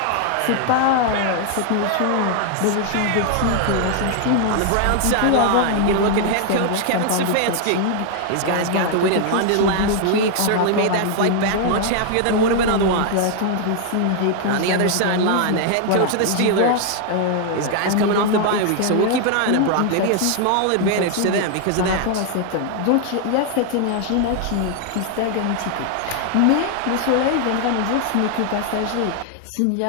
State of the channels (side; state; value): both; different; correlation 0.00